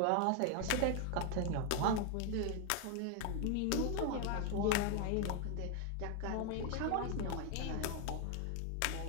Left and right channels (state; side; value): different; both; correlation 0.01